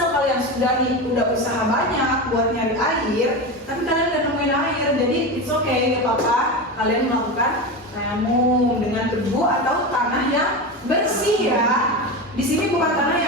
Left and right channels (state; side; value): normal; both; correlation 0.21